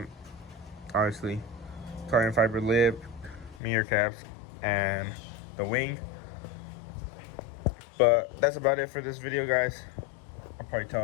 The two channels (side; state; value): right; drops out; at 3.6 s